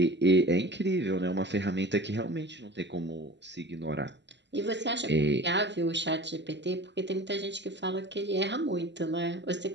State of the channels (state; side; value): late; left; 0.51 ms